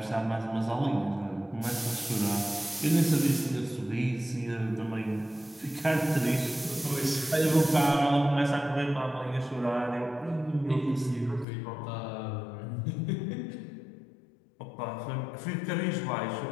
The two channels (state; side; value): drops out; right; at 11.5 s